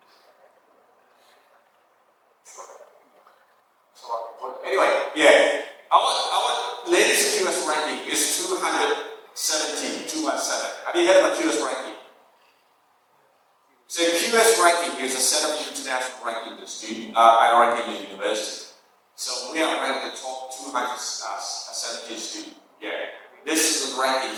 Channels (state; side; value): identical; both; correlation 1.00